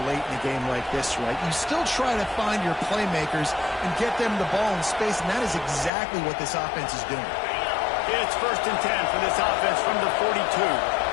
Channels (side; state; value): right; drops out; at 5.9 s